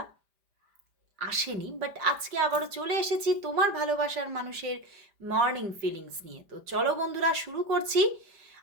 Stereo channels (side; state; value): left; late; 5.0 ms